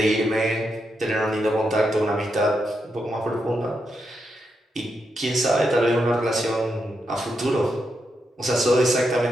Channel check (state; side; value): normal; both; correlation 0.84